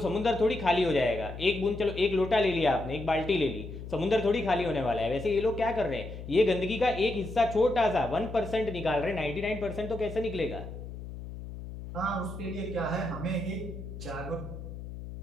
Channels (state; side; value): noise; left; hum, 10 dB below the sound